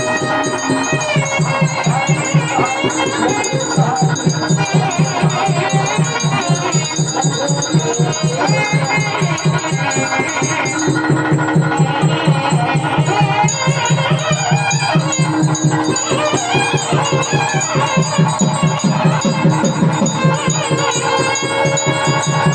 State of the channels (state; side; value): identical; both; correlation 1.00